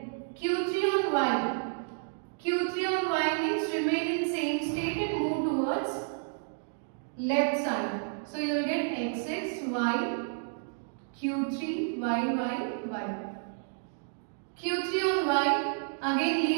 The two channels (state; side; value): silent; left; digital silence